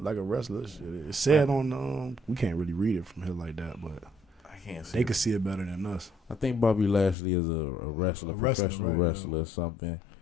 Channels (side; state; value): right; drops out; at 7.2 s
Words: like a wrestler. It said on. We can't really read it from here like that, but. They could see it better than us. I think Bobby Lashley is a wrestler, professional wrestler or something.